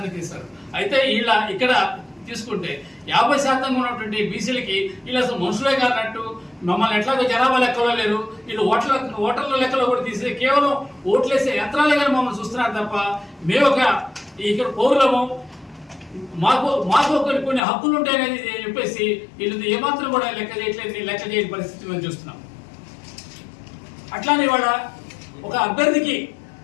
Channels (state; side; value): drops out; right; at 17.6 s